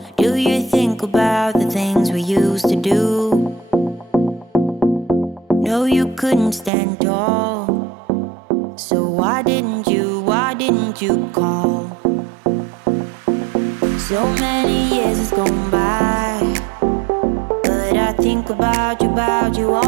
Do you think about the things we used to do? No, you couldn't stand tall. So why didn't you call? So many years has gone by, but I think about you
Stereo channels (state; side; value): drops out; left; at 6.7 s